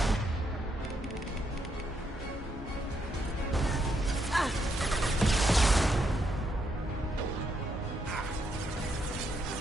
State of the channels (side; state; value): both; normal; correlation 0.77